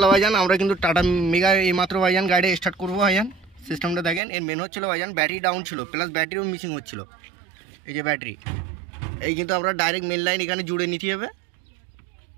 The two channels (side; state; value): left; drops out; at 4.2 s